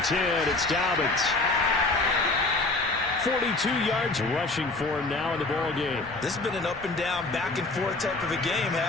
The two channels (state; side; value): quieter; right; 3.2 dB